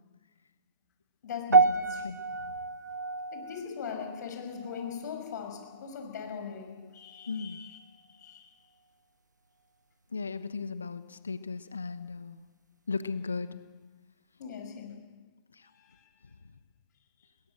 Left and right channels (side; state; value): both; inverted; correlation -0.48